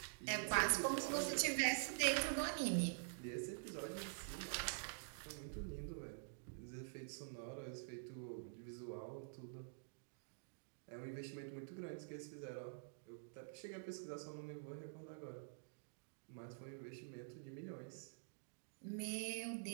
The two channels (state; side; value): silent; left; digital silence